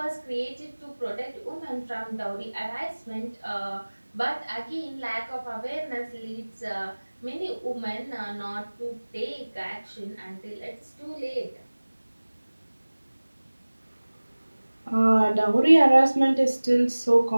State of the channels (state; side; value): inverted; both; correlation -1.00